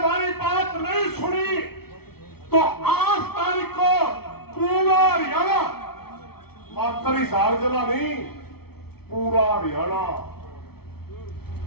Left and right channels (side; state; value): right; late; 0.95 ms